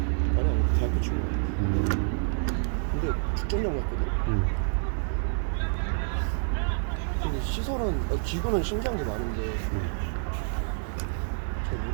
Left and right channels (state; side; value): silent; left; digital silence